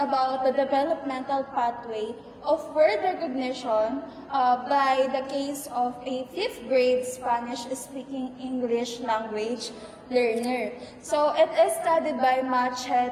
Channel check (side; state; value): both; identical; correlation 1.00